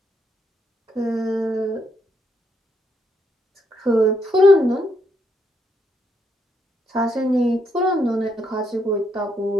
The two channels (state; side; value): normal; both; correlation 0.76